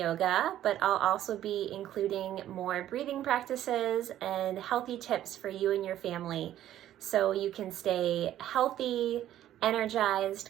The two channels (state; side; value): quieter; left; 12.3 dB